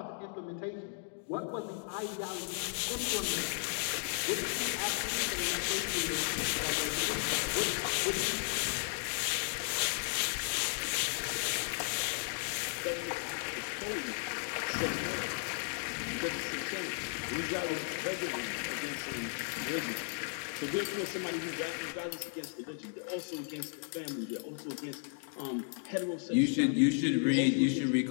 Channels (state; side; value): silent; right; 55 dB below the other